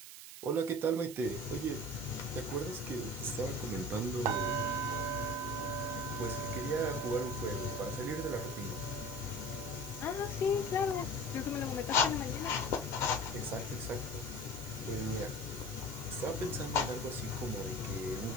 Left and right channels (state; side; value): noise; right; hiss, 12 dB below the sound